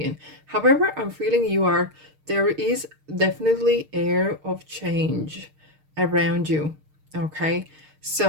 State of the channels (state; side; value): late; left; 6.5 ms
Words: However, I'm feeling you are there is definitely air of change around you. Okay,